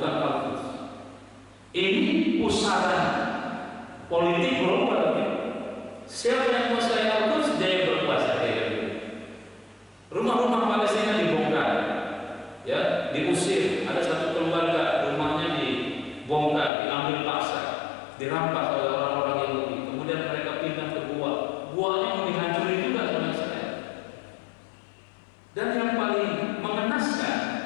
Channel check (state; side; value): drops out; right; at 16.7 s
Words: Al-Quds. Ini pusaran politik global. Siapa yang menguasai Al-Quds, dia yang berkuasa. Rumah-rumah Palestina dibongkar, ya, diusir. Ada satu keluarga rumahnya dibongkar, diambil paksa, dirampas oleh orang-orang Yahudi. Kemudian mereka pindah ke guanya mau dihancurin juga sama Israel. Dan yang paling mengenaskan,